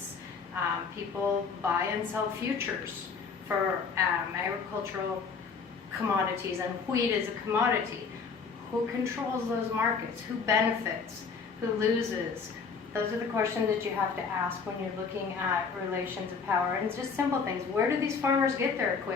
People buy and sell futures for agricultural commodities, and wheat is a commodity. Who controls those markets? Who benefits? Who loses? Those are the questions that you have to ask when you're looking at relations of power. And it's just simple things. Where do these farmers get their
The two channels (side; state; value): right; quieter; 5.4 dB